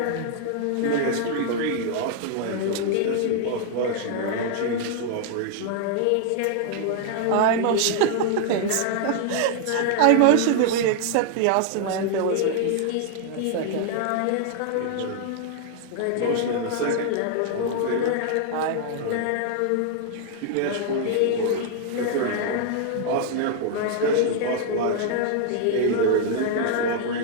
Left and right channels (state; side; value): different; both; correlation 0.00